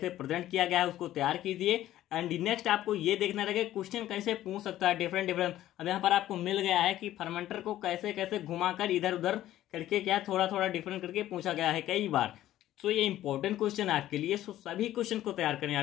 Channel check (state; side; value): quieter; right; 13.6 dB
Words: प्रेजेंट किया गया है, उसको तैयार कीजिए। एंड नेक्स्ट आपको ये देखना रहेगा क्वेश्चन कैसे पूछ सकता है डिफरेंट। अब यहाँ पर आपको मिल गया है कि फर्मेंटर को कैसे घुमाकर इधर उधर करके क्या थोड़ा डिफरेंट करके पूछा गया है कई बार। सो ये इंपॉर्टेंट क्वेश्चन है आपके लिए, सो सभी क्वेश्चन को तैयार करें,